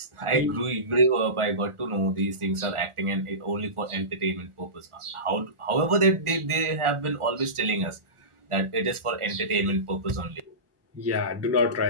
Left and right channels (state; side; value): late; left; 1.4 ms